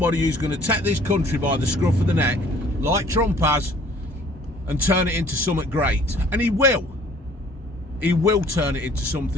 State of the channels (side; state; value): both; normal; correlation 0.55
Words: who's going to take this country by the scruff of the neck, like Trump has, and turn it into something great. And he will. He will turn it into